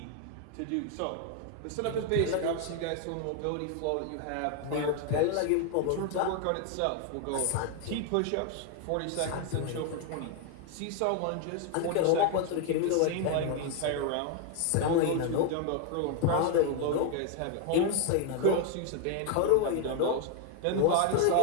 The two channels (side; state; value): both; different; correlation 0.00